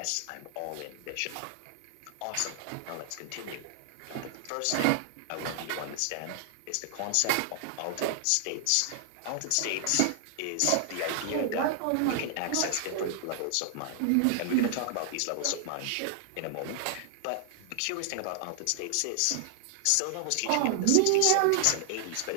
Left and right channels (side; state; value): both; different; correlation 0.00